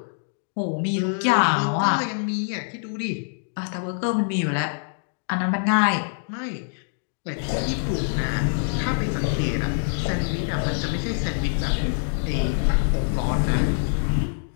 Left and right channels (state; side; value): silent; right; digital silence